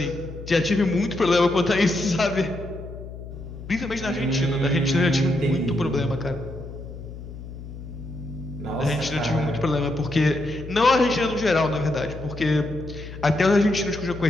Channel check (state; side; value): noise; left; hum, 12 dB below the sound